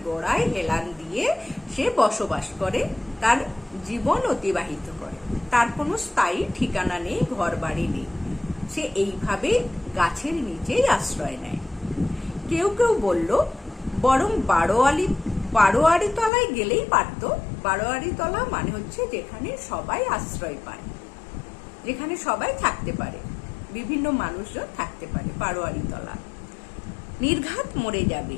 গোড়ায় হেলান দিয়ে সে বসবাস করে, তার জীবন অতিবাহিত করে। তার কোনো স্থায়ী ঠিকানা নেই, ঘর বাড়ি নেই, সে এইভাবে গাছের নিচেই আশ্রয় নেয়। কেউ কেউ বলল, বরং বারোয়ারি তলায় গেলেই পারত। বারোয়ারি তলা মানে হচ্ছে যেখানে সবাই আশ্রয় পায়, যেখানে সবাই থাকতে পারে, বিভিন্ন মানুষজন থাকতে পারে, বারোয়ারি তলা। নির্ঘাত মরে যাবে,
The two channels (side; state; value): right; drops out; at 16.3 s